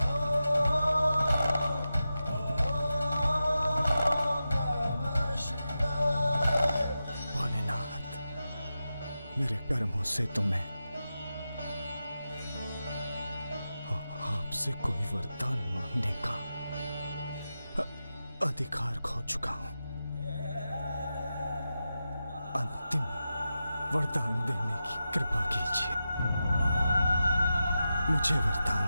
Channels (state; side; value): inverted; both; correlation -0.91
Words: मेरे कर्मों से तो मैं आपसे कोई वरदान मांगने का अधिकार खो चुका हूं। अंतिम वरदान देने की कृपा कीजिए, मुझे वरदान